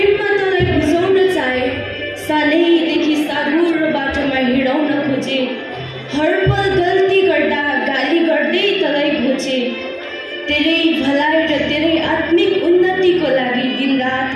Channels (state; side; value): identical; both; correlation 1.00